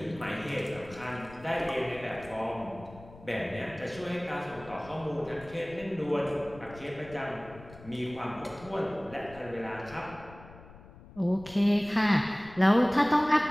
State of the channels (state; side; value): noise; left; rumble, 19 dB below the sound